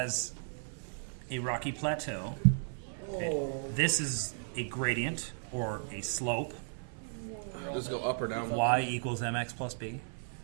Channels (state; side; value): silent; left; 54 dB below the other